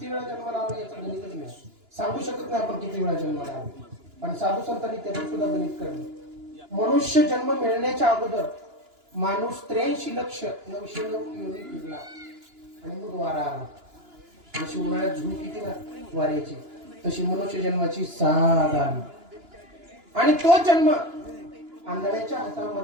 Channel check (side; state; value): left; late; 2.9 ms